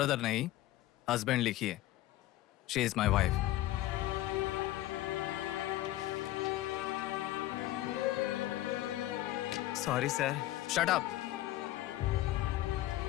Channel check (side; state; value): right; quieter; 15.4 dB